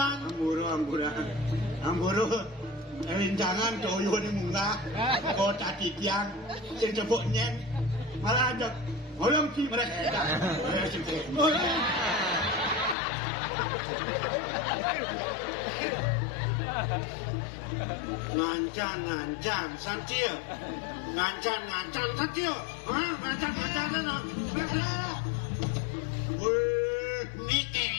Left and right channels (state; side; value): drops out; right; at 13.0 s